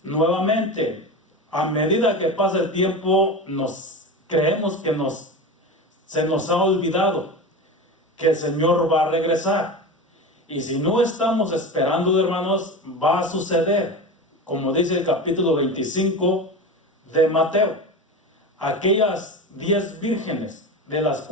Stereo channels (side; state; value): both; normal; correlation 0.26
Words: nuevamente, a medida que pasa el tiempo, creemos que se nos ha olvidado que el Señor va a regresar. Y si no estamos esperando, hermanos, va a suceder, como dice el capítulo 25 de Mateo. Aquellas 10 vírgenes, de las